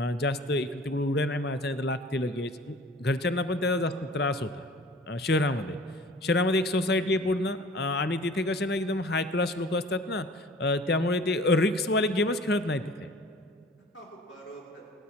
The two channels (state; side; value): normal; both; correlation 0.46